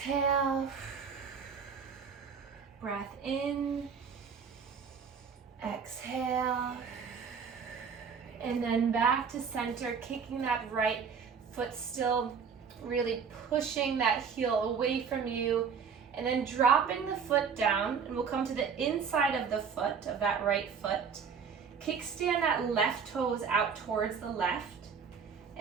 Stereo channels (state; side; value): quieter; left; 6.3 dB